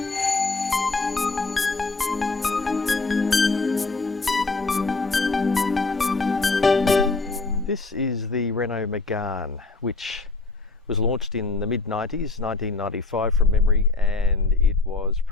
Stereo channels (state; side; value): quieter; right; 3.7 dB